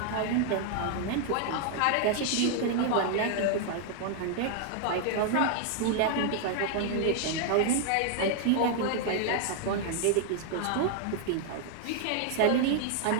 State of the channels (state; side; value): different; both; correlation 0.00